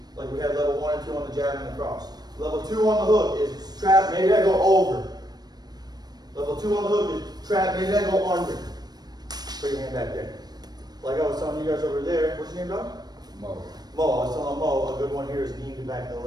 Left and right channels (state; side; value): late; left; 0.19 ms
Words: Like we had level 1 and 2 on the jab and the cross. Level 2 on the hook is trap, maybe I go over. Level 2 on the hook is trap, maybe I go under. Put your hand back there. Like I was telling you guys over there, what's your name, dog? Mo. Mo, I was telling Mo, a good one here is kneeing the back of